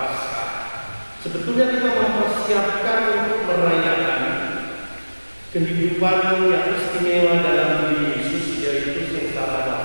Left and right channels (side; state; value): both; inverted; correlation -1.00